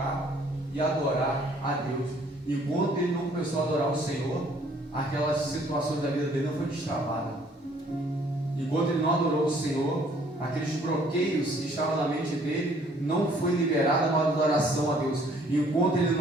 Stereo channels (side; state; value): both; normal; correlation 0.60